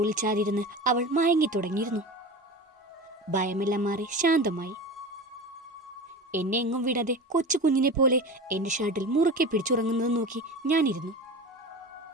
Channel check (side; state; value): both; normal; correlation 0.31